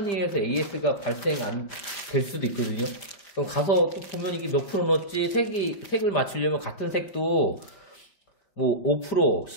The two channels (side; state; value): right; late; 5.0 ms